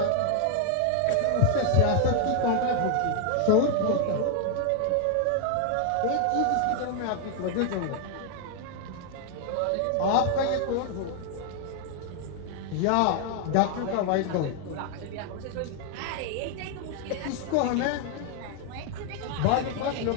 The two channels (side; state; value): both; different; correlation 0.00